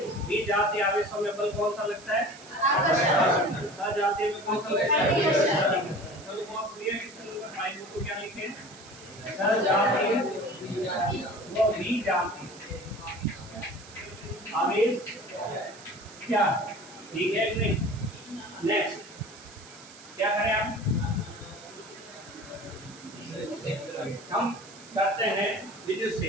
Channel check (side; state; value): right; noise; hiss, 19 dB below the sound